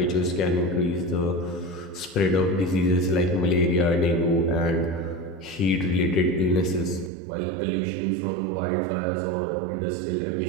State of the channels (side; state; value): left; drops out; at 7.1 s